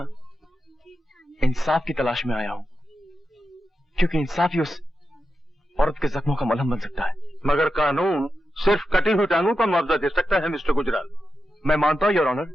इंसाफ की तलाश में आया हूं, क्योंकि इंसाफ ही उस औरत के जख्मों का मलहम बन सकता है। मगर कानून सिर्फ कटी हुई टांगों का मुआवजा दे सकता है मिस्टर गुजराल। मैं मानता हूं योर ऑनर,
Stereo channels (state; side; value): normal; both; correlation 0.89